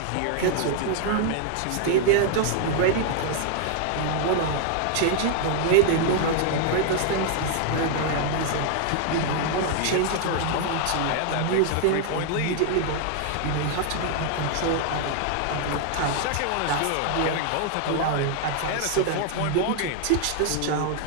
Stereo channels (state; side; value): different; both; correlation 0.00